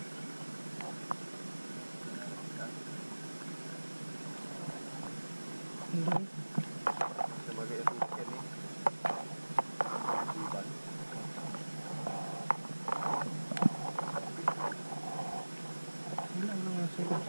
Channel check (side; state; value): both; inverted; correlation -1.00